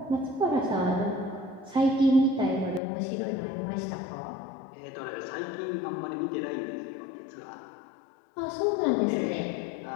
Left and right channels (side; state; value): right; drops out; at 2.8 s